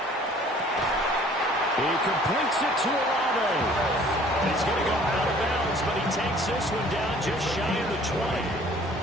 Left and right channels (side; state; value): both; normal; correlation 0.54